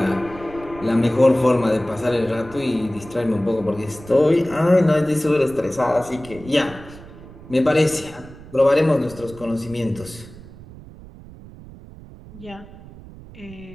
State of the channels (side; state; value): right; noise; rumble, 18 dB below the sound